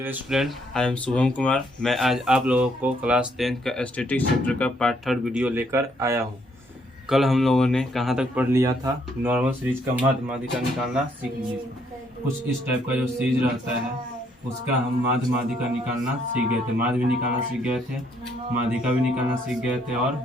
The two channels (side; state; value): both; normal; correlation 0.70